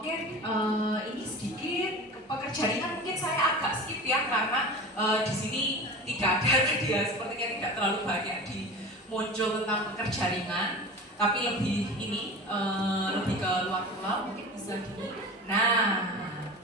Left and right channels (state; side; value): normal; both; correlation 0.33